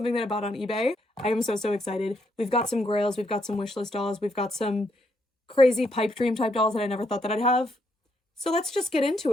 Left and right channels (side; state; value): both; normal; correlation 0.76